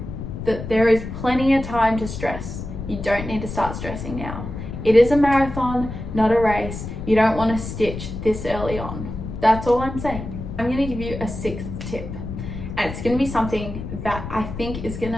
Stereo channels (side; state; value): left; noise; rumble, 8 dB below the sound